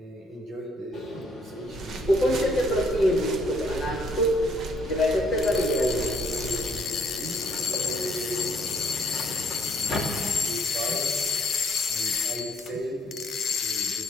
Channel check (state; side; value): normal; both; correlation 0.66